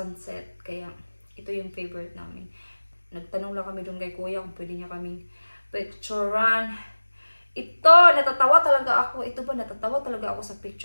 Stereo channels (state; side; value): inverted; both; correlation -1.00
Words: Kaya ito yung favorite namin. Nagtanong lang kami doon kay Kuya kung pwede niya kaming picturean. Ito, natatawa talaga ako. Natatawa talaga ako sa